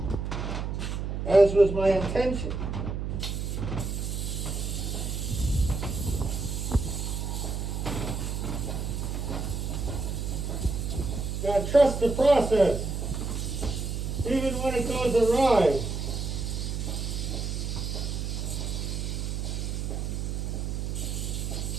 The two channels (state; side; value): noise; right; hum, 2 dB below the sound